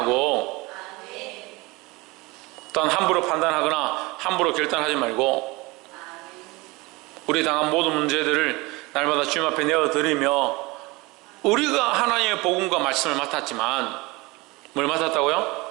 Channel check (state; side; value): quieter; left; 23.5 dB